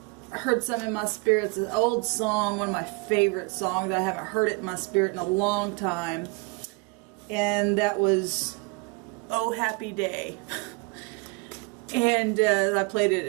heard something in my spirit. It's an old song, one of my favorite songs. I haven't heard it in my spirit in a long time. And that was, Oh Happy Day. And I played it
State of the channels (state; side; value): quieter; left; 29.0 dB